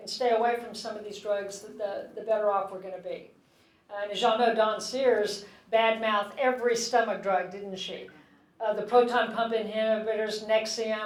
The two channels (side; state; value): both; identical; correlation 1.00